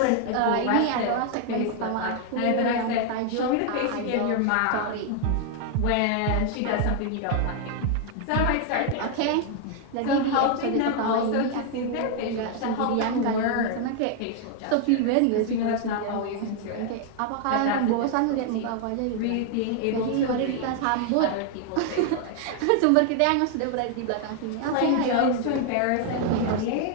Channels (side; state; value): both; different; correlation 0.00